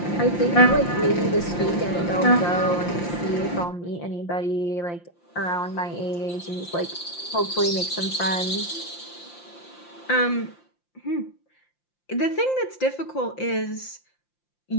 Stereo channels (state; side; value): late; right; 5.8 ms